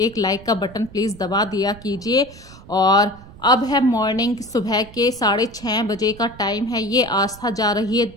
लाइक का बटन प्लीज़ दबा दिया कीजिए। और अब है मॉर्निंग, सुबह के 6:30 बजे का टाइम है। ये आस्था जा रही है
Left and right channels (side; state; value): right; noise; rumble, 19 dB below the sound